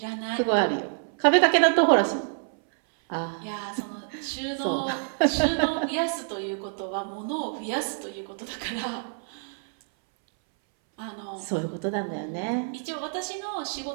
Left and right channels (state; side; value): silent; left; 60 dB below the other